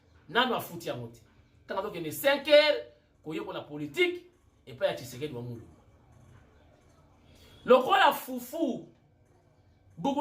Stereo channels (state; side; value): identical; both; correlation 1.00